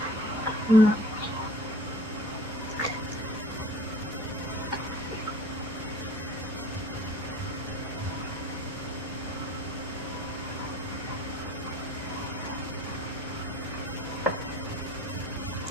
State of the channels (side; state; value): both; normal; correlation 0.46